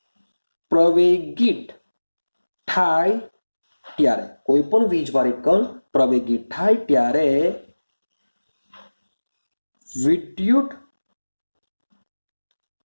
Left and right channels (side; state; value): both; inverted; correlation -1.00